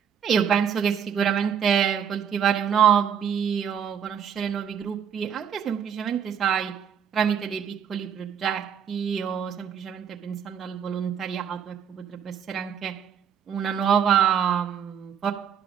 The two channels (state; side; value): quieter; left; 8.1 dB